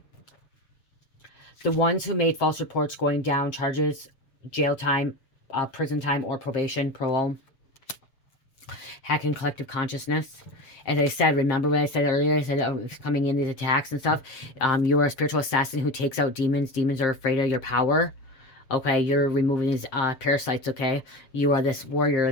The ones who made false reports going down charges, jail time, prison time, or probation, parole. Hacking collective consciousness. As I said, remember what I said earlier? I said coming in these attacks and stuff. You are a spiritual assassin who takes out demons. Demons are afraid of your power. Okay, you're removing these parasites, okay? You are this warrior.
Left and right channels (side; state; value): right; late; 7.5 ms